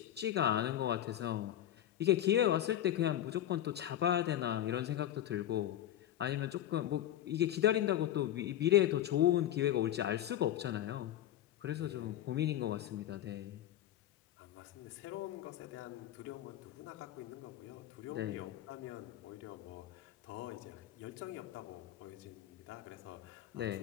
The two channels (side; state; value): right; quieter; 12.1 dB